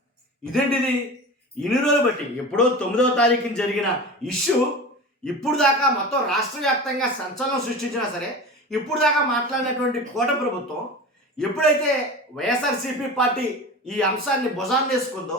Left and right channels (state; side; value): normal; both; correlation 0.31